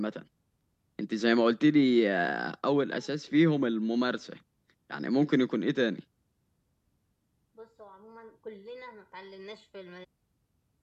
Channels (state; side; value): identical; both; correlation 1.00